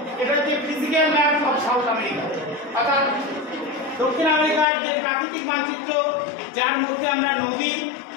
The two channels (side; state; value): right; drops out; at 4.7 s